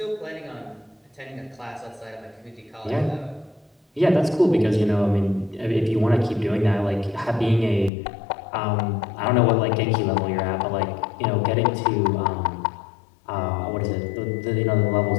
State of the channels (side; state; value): right; drops out; at 7.9 s